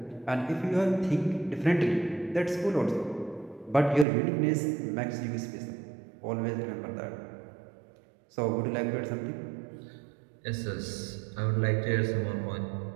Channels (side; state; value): left; drops out; at 4.0 s